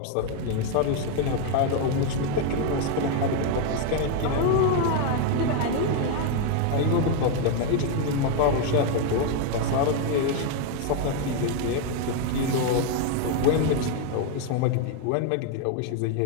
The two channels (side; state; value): both; different; correlation 0.01